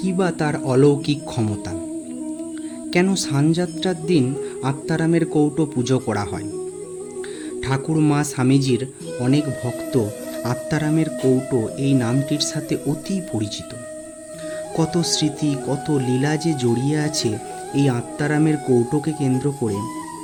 বা তার অলৌকিক ক্ষমতা? কেন স্নানযাত্রার দিন আত্মারামের কৌটো পুজো করা হয়? ঠাকুর মা স্বামীজির অনেক ভক্ত আত্মারামের কৌটো এই নামটির সাথে অতি পরিচিত। কত স্মৃতি, কত লীলা যে জড়িয়ে আছে এই আত্মারামের কৌটোকে কেন্দ্র করে।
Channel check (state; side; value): identical; both; correlation 1.00